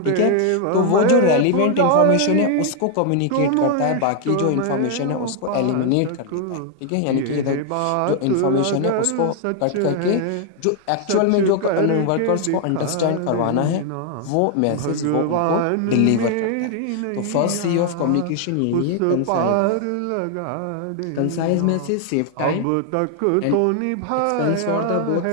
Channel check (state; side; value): different; both; correlation 0.00